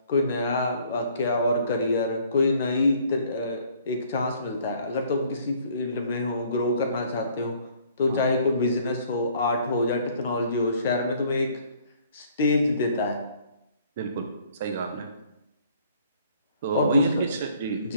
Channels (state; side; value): inverted; both; correlation -0.59